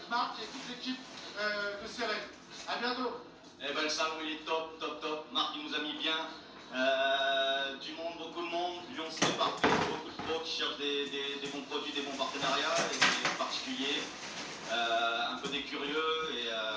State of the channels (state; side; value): identical; both; correlation 1.00